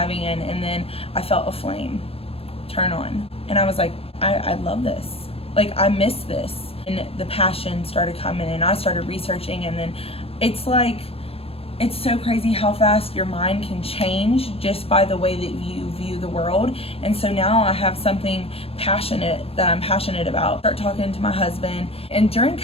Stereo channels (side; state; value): right; late; 0.28 ms